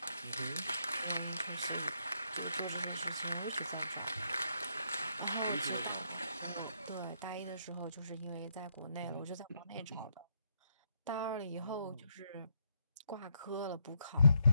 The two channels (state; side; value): inverted; both; correlation -0.76